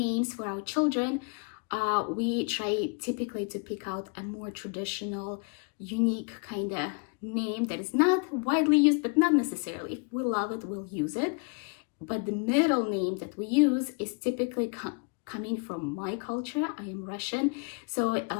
for our children, we try typically to pick out a more traditional, unique kind of name that is not widely used, but not necessarily. If we love it, we'll use it. But the middle name that we use is typically coming from my culture. I am Russian, so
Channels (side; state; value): right; quieter; 34.3 dB